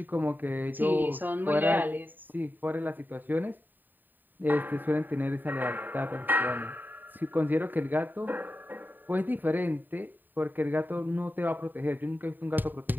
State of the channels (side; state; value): left; late; 0.090 ms